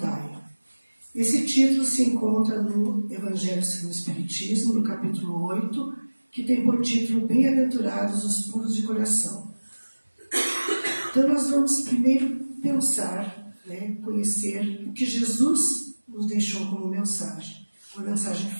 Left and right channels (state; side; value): inverted; both; correlation -1.00